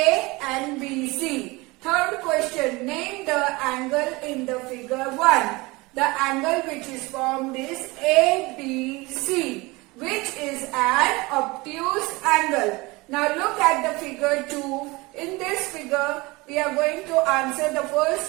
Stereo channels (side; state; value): left; quieter; 23.4 dB